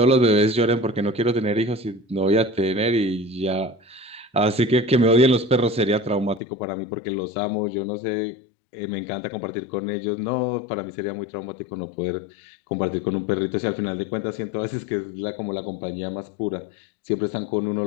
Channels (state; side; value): drops out; right; at 6.4 s